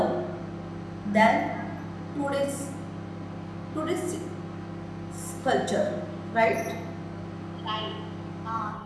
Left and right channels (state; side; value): identical; both; correlation 1.00